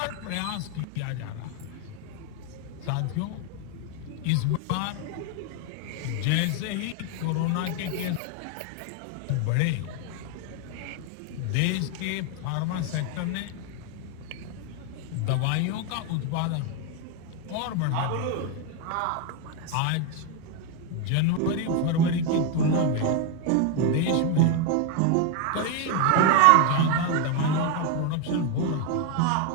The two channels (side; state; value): both; different; correlation 0.01